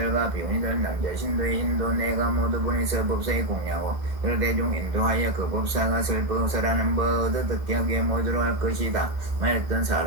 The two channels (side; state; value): left; late; 1.7 ms